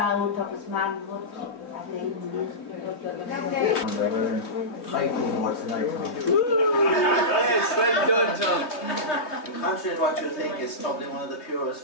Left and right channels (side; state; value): right; late; 3.2 ms